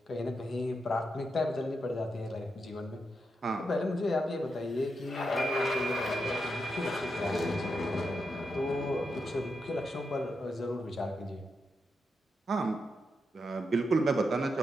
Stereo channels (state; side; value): normal; both; correlation 0.85